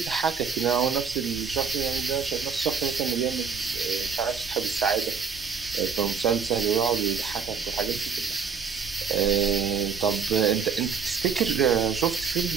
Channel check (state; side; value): quieter; left; 6.1 dB